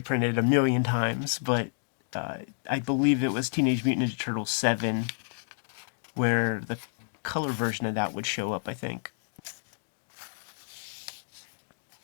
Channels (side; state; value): right; silent; digital silence